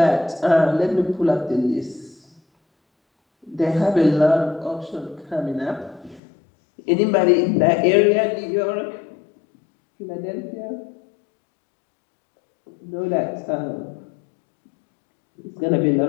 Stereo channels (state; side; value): drops out; right; at 6.2 s